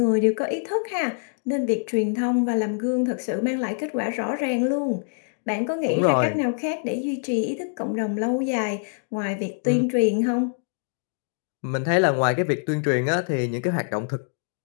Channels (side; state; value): right; silent; digital silence